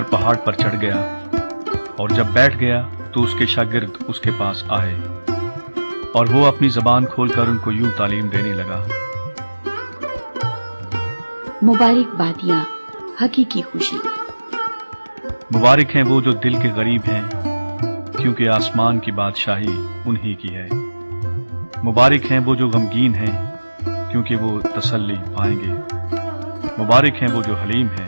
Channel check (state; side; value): inverted; both; correlation -1.00